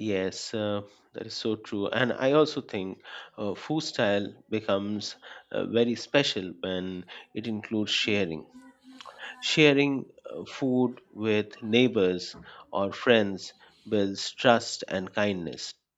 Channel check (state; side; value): identical; both; correlation 1.00